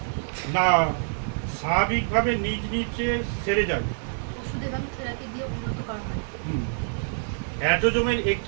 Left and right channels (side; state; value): left; silent; digital silence